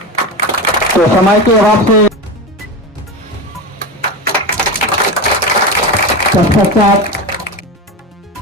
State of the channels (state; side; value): normal; both; correlation 0.22